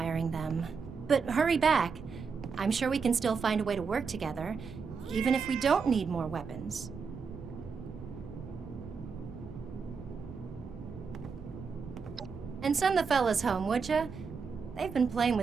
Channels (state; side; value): quieter; left; 5.4 dB